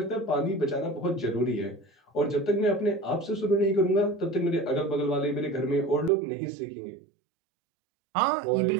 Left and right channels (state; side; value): drops out; left; at 6.1 s